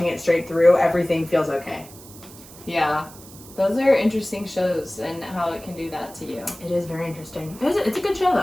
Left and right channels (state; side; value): noise; right; hiss, 19 dB below the sound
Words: it straight through, everything feels okay. Yeah. Those are interesting shows and how it can do that to you. It is very interesting. It's a good show,